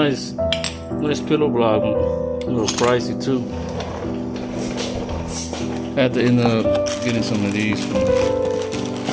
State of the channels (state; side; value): identical; both; correlation 1.00